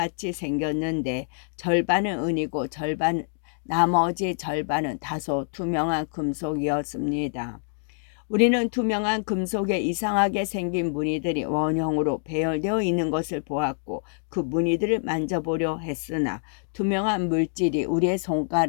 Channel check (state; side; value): silent; right; 61 dB below the other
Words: 생겼는데 절반은 은이고 나머지 절반은 다소 투명한 금속이었습니다. 우리는 투명한 금속에 이상하게 생긴 무늬들이 원형으로 배열되어 있는 것을 보았고 그 무늬들을 만져보려 했으나 투명한 물질이 우리의